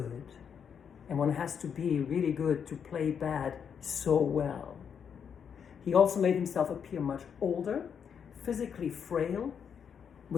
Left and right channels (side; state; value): right; quieter; 7.4 dB